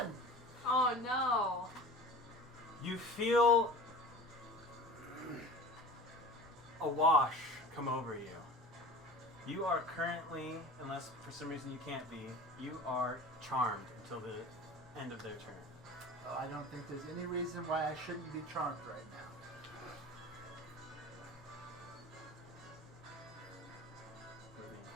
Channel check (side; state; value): both; normal; correlation 0.38